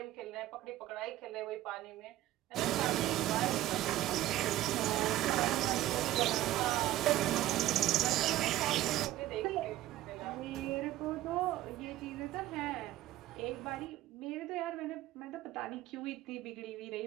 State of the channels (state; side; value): quieter; left; 14.7 dB